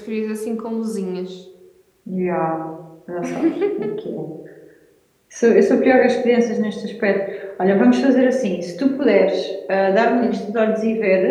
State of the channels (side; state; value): both; identical; correlation 1.00